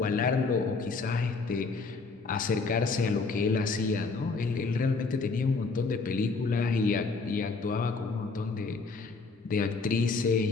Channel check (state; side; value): quieter; right; 4.2 dB